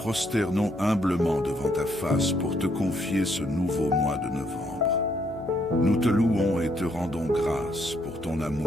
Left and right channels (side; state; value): left; noise; hum, 19 dB below the sound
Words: humblement devant ta face pour te confier ce nouveau mois de novembre. Nous te louons et te rendons grâce pour ton